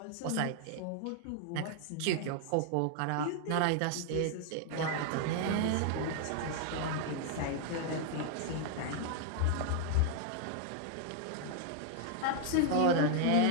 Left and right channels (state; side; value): different; both; correlation 0.00